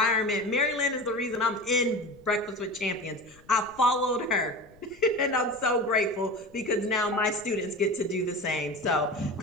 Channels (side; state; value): left; noise; rumble, 27 dB below the sound